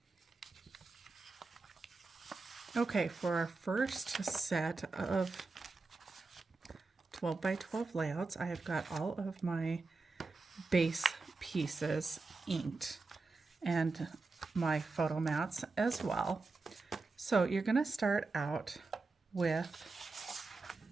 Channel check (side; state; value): left; quieter; 3.8 dB